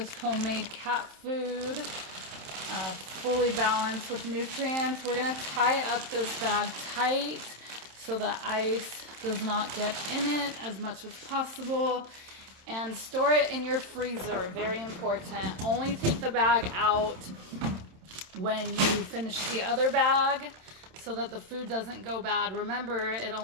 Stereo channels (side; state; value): left; late; 27 ms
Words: homemade cat food, fully balanced with nutrients. We're gonna tie up this bag tight so that ice does not get in it as much as possible, and store it in your freezer. Very important. Only take the bag out when you finish the other bag so that the food doesn't go bad. Remember, it